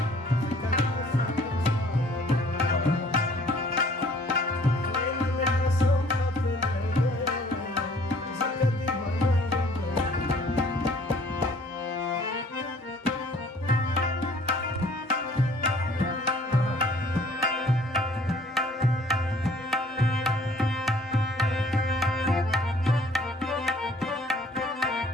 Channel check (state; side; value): normal; both; correlation 0.57